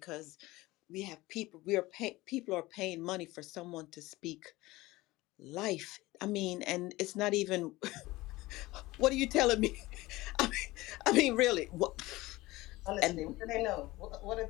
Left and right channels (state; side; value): quieter; right; 19.4 dB